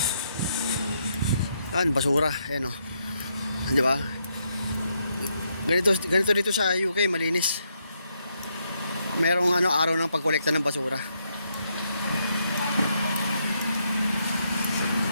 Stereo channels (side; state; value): both; inverted; correlation -0.78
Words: Yan, basura. Ayan o. Di ba? Ganito dito sa UK, malinis. Merong ano, araw ng pagkolekta ng basura.